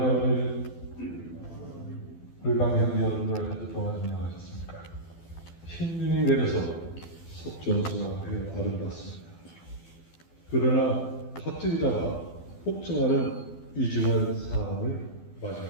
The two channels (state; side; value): late; right; 12 ms